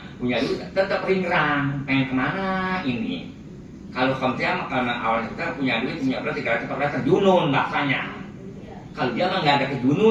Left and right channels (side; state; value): both; identical; correlation 1.00